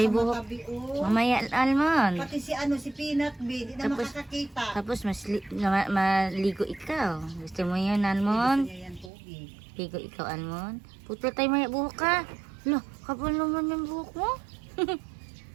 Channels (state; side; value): drops out; left; at 9.1 s